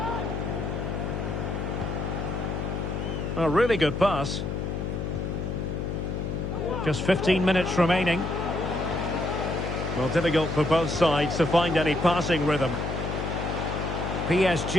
A really good pass. Just 15 minutes remaining. Well, difficult for both sides to find any passing rhythm.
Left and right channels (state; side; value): noise; left; hum, 3 dB below the sound